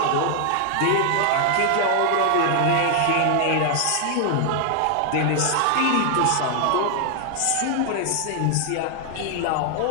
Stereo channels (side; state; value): both; different; correlation 0.00